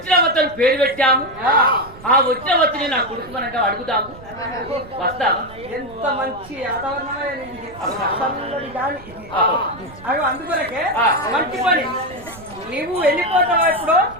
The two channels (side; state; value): right; noise; rumble, 19 dB below the sound